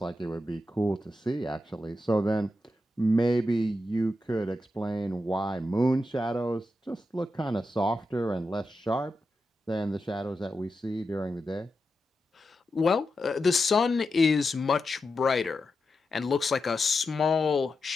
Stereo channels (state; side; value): normal; both; correlation 0.88